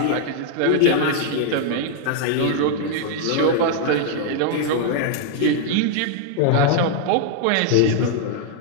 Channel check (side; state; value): both; different; correlation 0.00